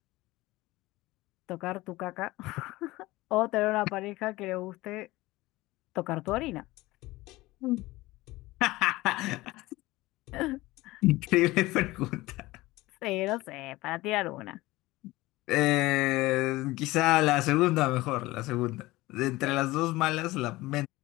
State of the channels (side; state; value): right; quieter; 19.4 dB